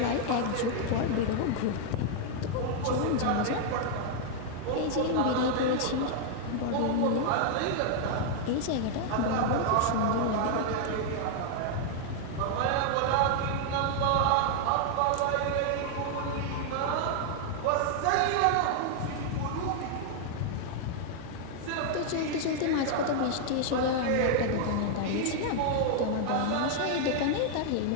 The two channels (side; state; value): both; different; correlation 0.00